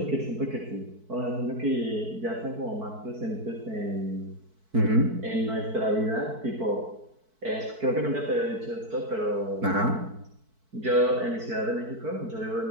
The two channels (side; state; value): left; late; 4.6 ms